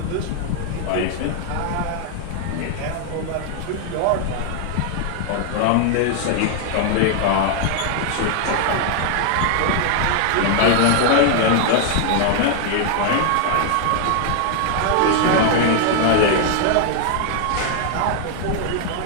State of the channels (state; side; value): different; both; correlation 0.00